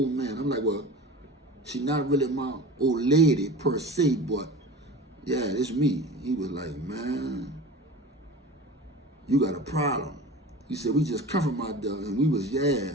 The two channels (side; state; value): both; normal; correlation 0.35